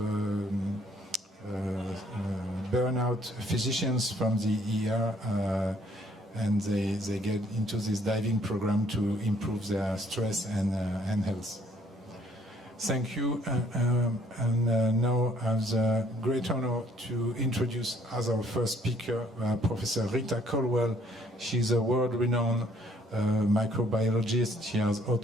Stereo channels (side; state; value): both; normal; correlation 0.63